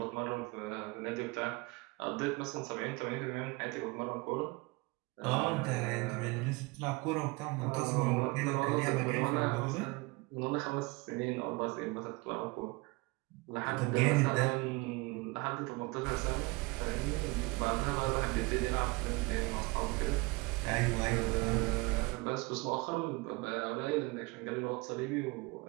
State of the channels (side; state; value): left; quieter; 25.2 dB